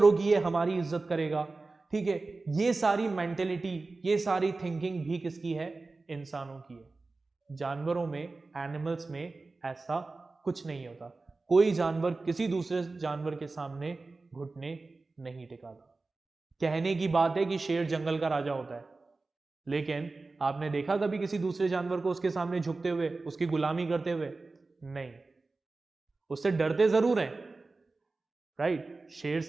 कि ये हमारी इज्जत करेगा, ठीक है। ये सारी मेंटेलिटी, ये सारी थिंकिंग भी किसकी है? इंसानों की है। जानवरों में, एनिमल्स में ऐसा कुछ नहीं होता। कोई जानवर किसी दूसरे जानवर के सामने घुटने नहीं टिकाता। कहने की बात है कि शेर जंगल का राजा होता है, लेकिन आपने देखा कभी किसी दूसरे जानवर को उसके सामने झुकते हुए, उसकी गुलामी करते हुए? नहीं। उससे डरते जरूर हैं, राइट। शेर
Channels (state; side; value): quieter; left; 3.6 dB